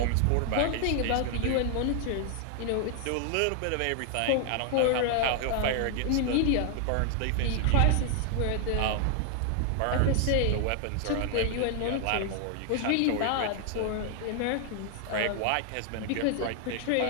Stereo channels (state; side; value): different; both; correlation 0.00